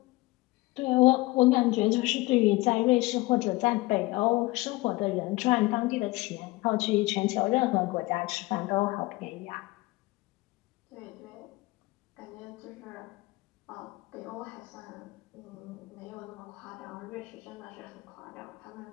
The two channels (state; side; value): quieter; right; 21.3 dB